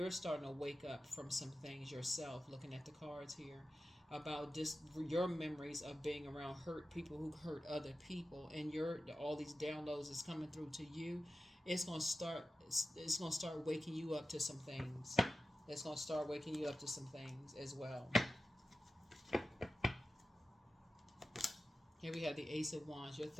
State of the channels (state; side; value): normal; both; correlation 0.92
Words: starting to wake up from some things yourself, looking at the cards here, about just your memories of being around hurt people who hurt other people, and all these downloads is coming through to you. It's gonna start waking you up to some things. It's gonna start waking you up to some things as well. Here we have the Ace of Wands. Your